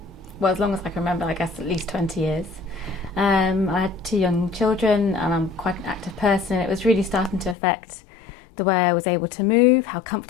well, as long as I can remember, I guess at least 20 years. I had 2 young children and I'm quite an active person. It was really starting to affect the way I was able to move, how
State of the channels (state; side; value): drops out; right; at 7.6 s